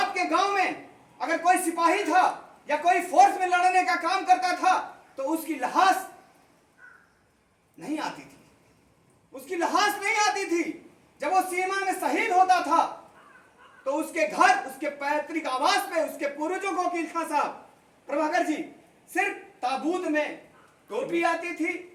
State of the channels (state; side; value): identical; both; correlation 1.00